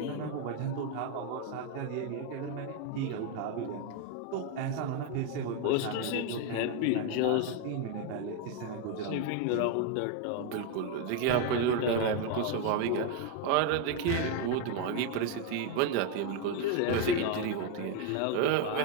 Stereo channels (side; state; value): both; different; correlation 0.01